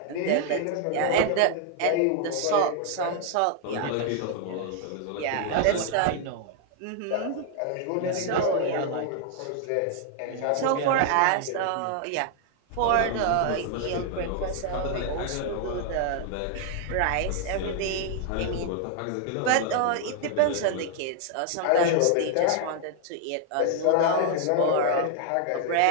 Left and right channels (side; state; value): both; different; correlation 0.00